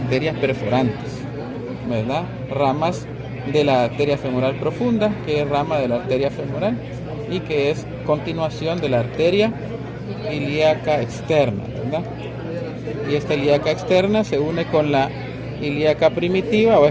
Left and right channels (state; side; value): identical; both; correlation 1.00